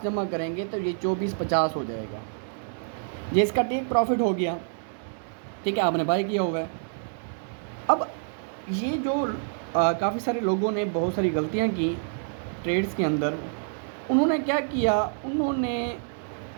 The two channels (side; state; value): left; silent; digital silence